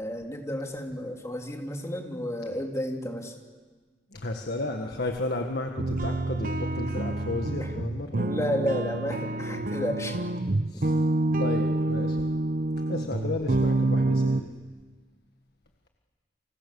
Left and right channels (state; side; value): normal; both; correlation 0.68